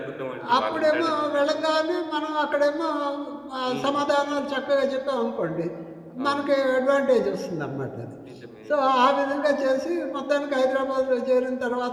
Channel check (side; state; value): both; identical; correlation 1.00